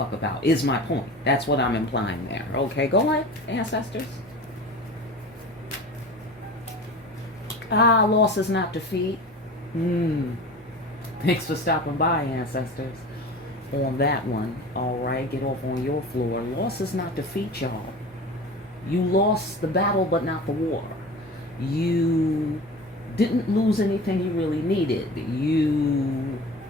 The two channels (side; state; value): both; normal; correlation 0.35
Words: about, is my point. That's what I'm implying there. Okay, go ahead, ancestors. Loss is not defeat. Thanks for stopping by, ancestors. On that one, all right, get off on your floor. Loss is not defeat, y'all. You lost the battle, but not the war. You didn't lose anything you really needed. You